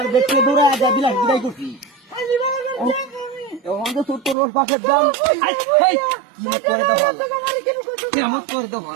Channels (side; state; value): left; drops out; at 4.4 s